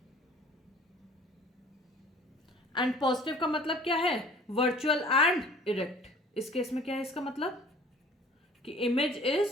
एंड पॉजिटिव का मतलब क्या है, वर्चुअल एंड इरेक्ट। इस केस में क्या है इसका मतलब कि image is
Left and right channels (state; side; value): normal; both; correlation 0.49